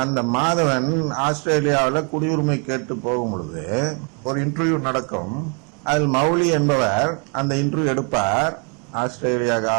அந்த மாதவன் ஆஸ்திரேலியாவில குடியுரிமை கேட்டு போகும் பொழுது ஒரு இன்டர்வியூ நடக்கும். அதில் மௌலி என்பவர் அந்த இன்டர்வியூ எடுப்பார், ஆஸ்திரேலியா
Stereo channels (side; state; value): left; quieter; 36.9 dB